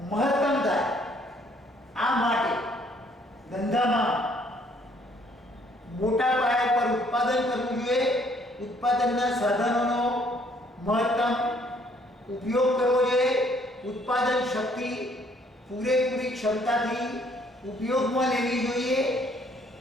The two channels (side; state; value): both; normal; correlation 0.64